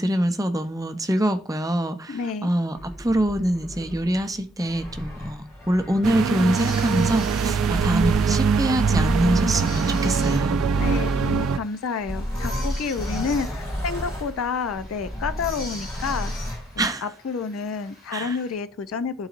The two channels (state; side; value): normal; both; correlation 0.71